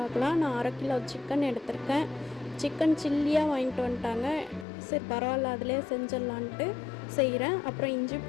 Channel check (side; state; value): right; drops out; at 4.7 s